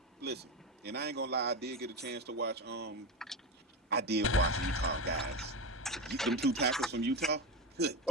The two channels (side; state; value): both; normal; correlation 0.17